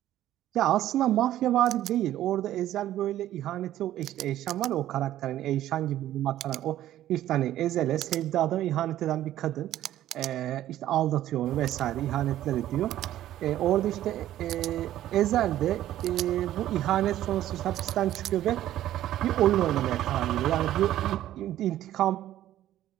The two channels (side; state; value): left; quieter; 13.1 dB